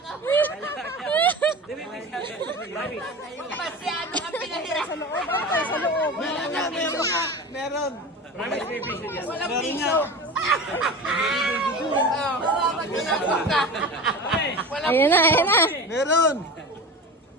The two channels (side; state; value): both; normal; correlation 0.31